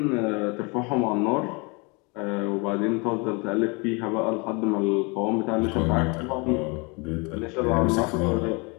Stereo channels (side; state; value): right; quieter; 29.8 dB